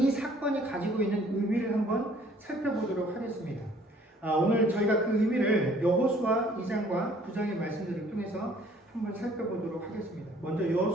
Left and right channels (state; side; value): normal; both; correlation 0.58